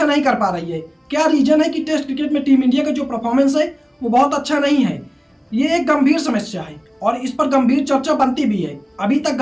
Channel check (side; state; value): both; identical; correlation 1.00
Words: नहीं कर पा रही है? क्या रीजन है कि टेस्ट क्रिकेट में टीम इंडिया का जो परफॉर्मेंस है वो बहुत अच्छा नहीं है? ये एक गंभीर समस्या है और इस पर गंभीर चर्चा बनती भी है। अभी तक